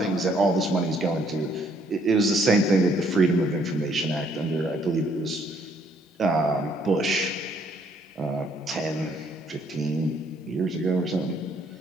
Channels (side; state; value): both; normal; correlation 0.66